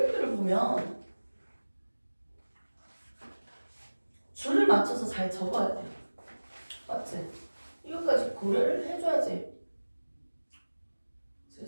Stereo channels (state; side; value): inverted; both; correlation -1.00